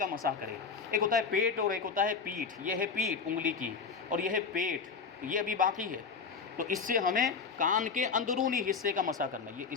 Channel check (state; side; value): quieter; right; 5.4 dB